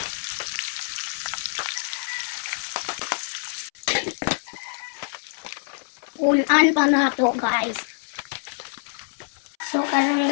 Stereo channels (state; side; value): silent; right; 61 dB below the other